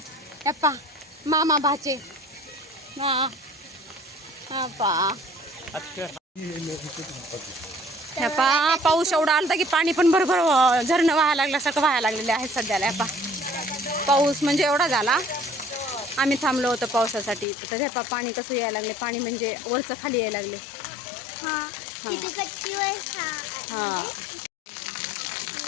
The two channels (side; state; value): right; drops out; at 17.4 s